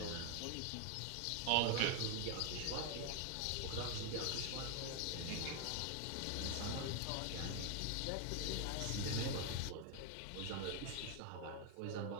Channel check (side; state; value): both; different; correlation 0.00